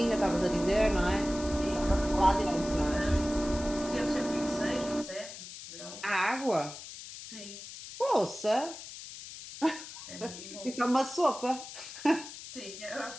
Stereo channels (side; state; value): left; noise; hiss, 12 dB below the sound